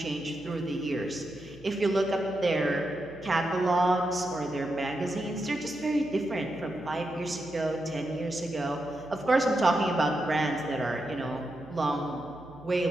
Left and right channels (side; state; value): right; noise; hum, 21 dB below the sound